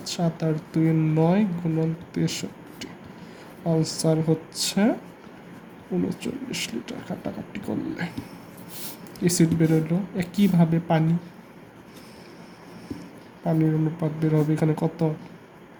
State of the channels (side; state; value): both; identical; correlation 1.00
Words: 7 আর 2 9, গুণন 63। আনসার হচ্ছে 39 লিটার। কাটাকাটি করলে অ্যাসিড বেরোলো। একইভাবে পানির অনুপাত বের হবে এখানে কত?